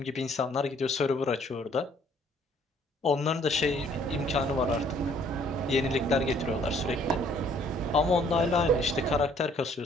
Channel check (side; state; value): both; normal; correlation 0.61